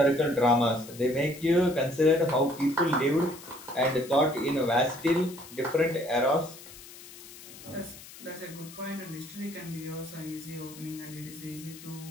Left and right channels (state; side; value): noise; left; hiss, 17 dB below the sound